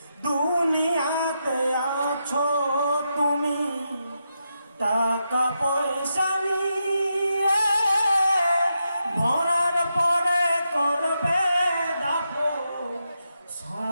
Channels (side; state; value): both; inverted; correlation -0.84